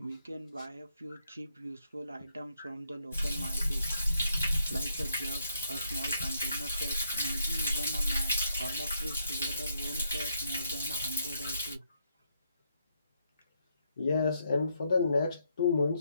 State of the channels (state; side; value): inverted; both; correlation -0.75